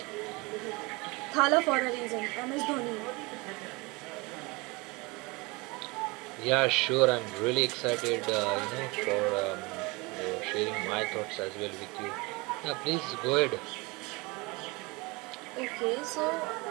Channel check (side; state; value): left; quieter; 25.6 dB